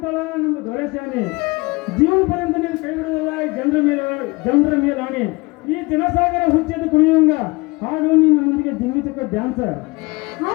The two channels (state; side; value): quieter; right; 24.5 dB